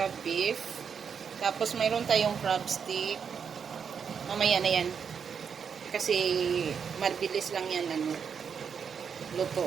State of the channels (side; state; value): left; quieter; 6.8 dB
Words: beef. Tapos mayroon tayong crab stick. Mamaya na yan. Kasi mabilis lang yan